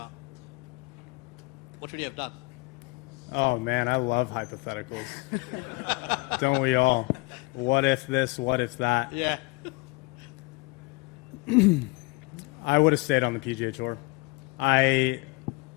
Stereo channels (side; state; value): right; quieter; 26.7 dB